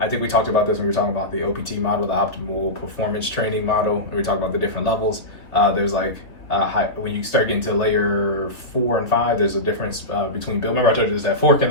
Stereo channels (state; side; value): late; right; 3.3 ms